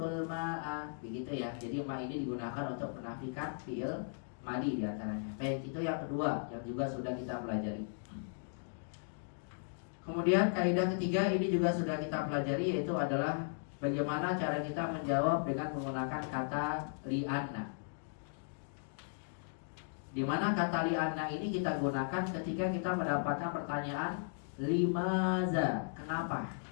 ma'a. Begitu ya. Jadi ma ini digunakan untuk menafikan fi'il madi diantaranya. Baik, itu yang kedua yang juga sudah kita pelajari. Kemudian kaidah ketiga ini juga sudah kita pelajari, yaitu adalah bagaimana cara kita menjawab dengan menggunakan kata li'anna. Di mana kata li'anna ini kita gunakan ketika kita mendapatkan pertanyaan limaza, kenapa?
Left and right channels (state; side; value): silent; right; digital silence